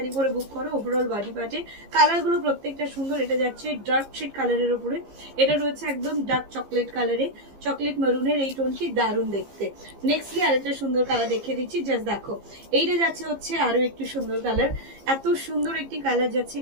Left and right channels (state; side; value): late; left; 15 ms